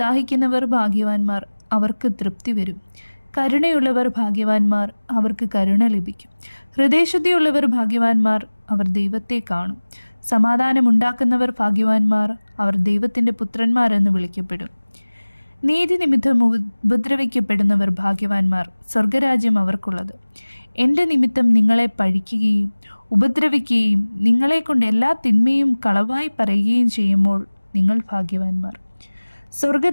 ദാഹിക്കുന്നവർ ഭാഗ്യവാന്മാർ, അവർക്ക് തൃപ്തി വരും. കരുണയുള്ളവർ ഭാഗ്യവാന്മാർ, അവർക്ക് കരുണ ലഭിക്കും. ഹൃദയശുദ്ധിയുള്ളവർ ഭാഗ്യവാന്മാർ, അവർ ദൈവത്തെ കാണും. സമാധാനമുണ്ടാക്കുന്നവർ ഭാഗ്യവാന്മാർ, അവർ ദൈവത്തിൻ്റെ പുത്രന്മാരെന്ന് വിളിക്കപ്പെടും. നീതി നിമിത്തം ഉപദ്രവിക്കപ്പെടുന്നവർ ഭാഗ്യവാന്മാർ, സ്വർഗരാജ്യം അവർക്കുള്ളത്. എൻ്റെ നിമിത്തം നിങ്ങളെ പഴിക്കുകയും ഉപദ്രവിക്കുകയും നിങ്ങളെക്കൊണ്ട് എല്ലാ തിന്മയും കളവായി പറയുകയും ചെയ്യുമ്പോൾ നിങ്ങൾ ഭാഗ്യവാന്മാർ.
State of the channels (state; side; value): inverted; both; correlation -1.00